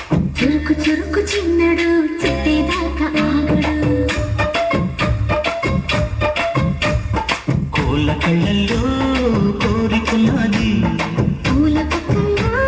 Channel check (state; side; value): identical; both; correlation 1.00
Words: చురుకు చురుకు చిన్నడు చుట్టేదాకా ఆగడు. కోళ్ళ కళ్ళల్లో కోరికున్నది. పూల పక్కల్లో